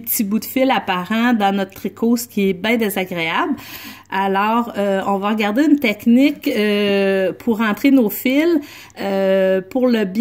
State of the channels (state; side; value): identical; both; correlation 1.00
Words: bouts de fil apparents dans notre tricot, ce qui est bien désagréable. Alors, on va regarder une technique pour rentrer nos fils. Pour le